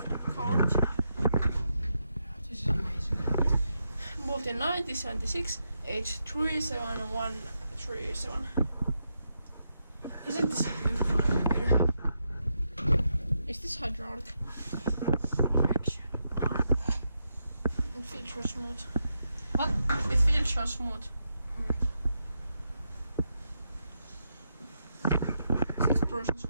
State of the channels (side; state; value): both; inverted; correlation -0.83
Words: card. This is amazing. Born in 1976, age 37137. Isn't this a beautiful elevator? Is this hydraulic? Action. It feels so smooth. What? It feels so smooth. 6 persons